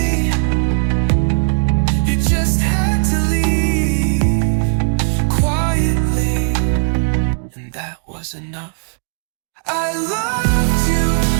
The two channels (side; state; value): left; silent; digital silence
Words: you just had to leave quietly, and that was enough. I loved you